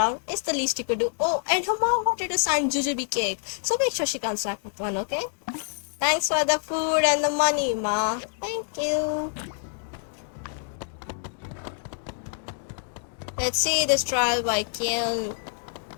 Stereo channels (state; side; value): silent; right; digital silence